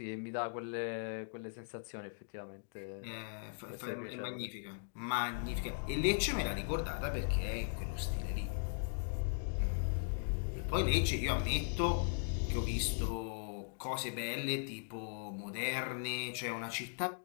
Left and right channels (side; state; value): right; silent; digital silence